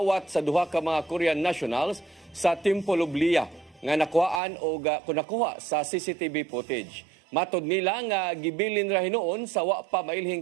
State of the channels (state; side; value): drops out; left; at 4.4 s